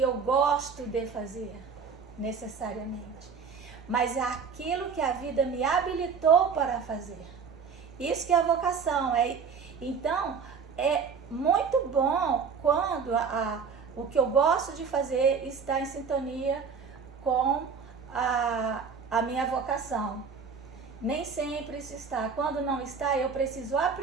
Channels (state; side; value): quieter; left; 5.9 dB